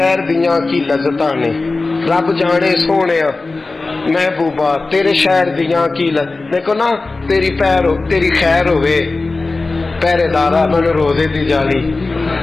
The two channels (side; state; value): right; quieter; 3.5 dB